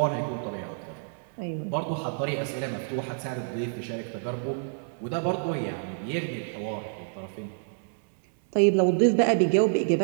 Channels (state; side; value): silent; left; 59 dB below the other